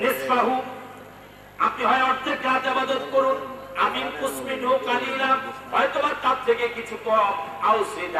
নিসফাহু, আপনি হয় অর্ধেক রাত ইবাদত করুন, আমিন কুসমিনহু কালিলা, হয়তো তার থেকে কিছু কম, আও জিদ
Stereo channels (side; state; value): both; identical; correlation 1.00